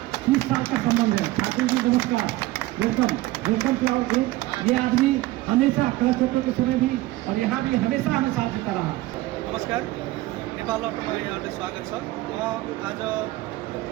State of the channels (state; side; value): quieter; left; 18.1 dB